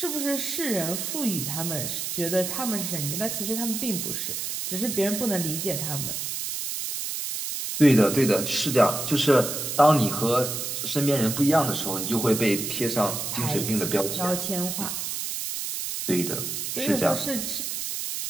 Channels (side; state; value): right; noise; hiss, 4 dB below the sound